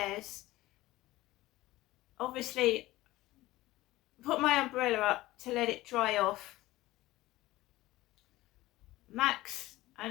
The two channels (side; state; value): right; quieter; 17.6 dB